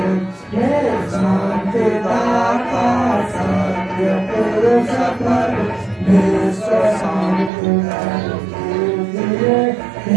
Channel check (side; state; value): left; drops out; at 7.5 s